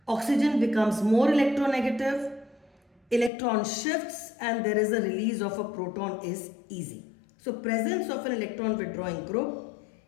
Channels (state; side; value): drops out; right; at 3.3 s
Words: Oxygen becomes more electronegative. Electron shifts and there is a release of a proton is easy. So, presence of an electron withdrawing group